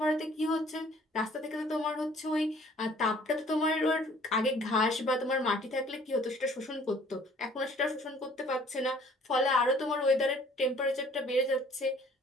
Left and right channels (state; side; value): normal; both; correlation 0.56